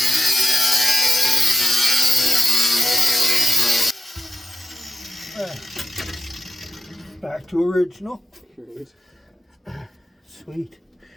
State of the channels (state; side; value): normal; both; correlation 0.89